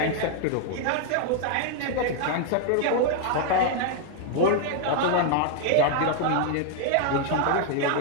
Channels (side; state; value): both; different; correlation 0.00